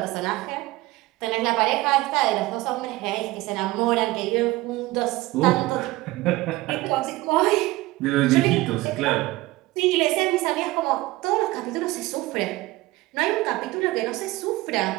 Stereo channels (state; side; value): quieter; left; 19.4 dB